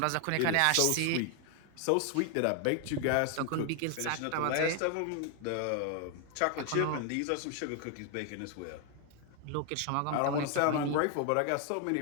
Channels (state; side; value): different; both; correlation 0.00